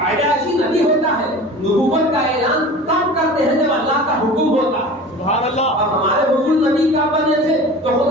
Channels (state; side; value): normal; both; correlation 0.38